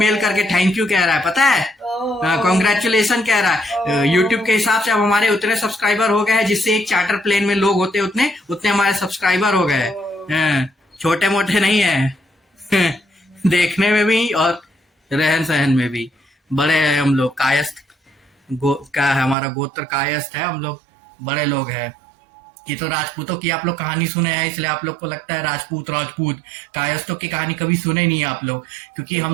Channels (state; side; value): drops out; left; at 19.4 s